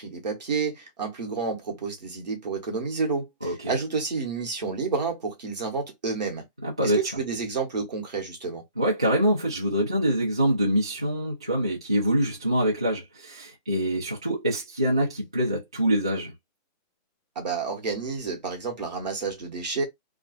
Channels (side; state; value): both; inverted; correlation -0.57